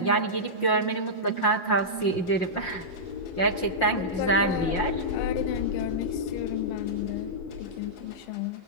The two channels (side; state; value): right; late; 5.7 ms